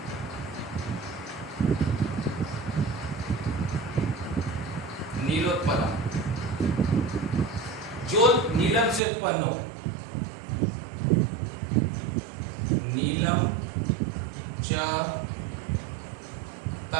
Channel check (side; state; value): left; drops out; at 9.0 s